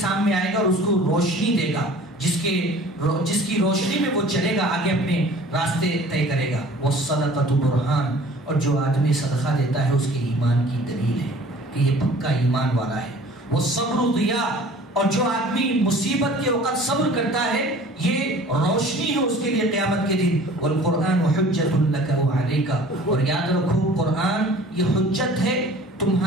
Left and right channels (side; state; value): both; normal; correlation 0.48